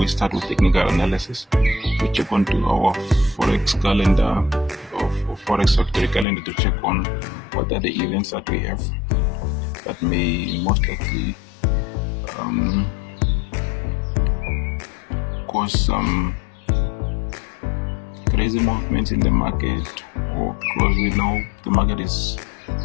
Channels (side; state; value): right; drops out; at 6.2 s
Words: start with technical analysis. We check onto our forex calendar or forex factory calendar to check on what are the events that we have that may most likely cause some crazy movements in the market, or because we know the market is